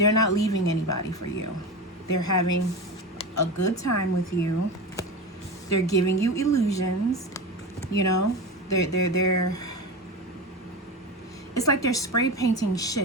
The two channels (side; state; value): both; normal; correlation 0.24